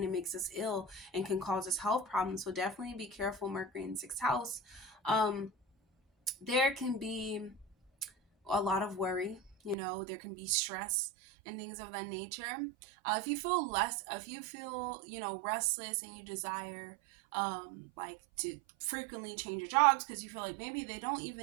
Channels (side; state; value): left; drops out; at 9.8 s